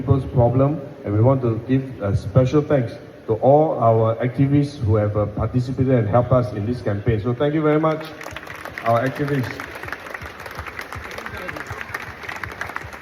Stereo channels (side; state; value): both; identical; correlation 1.00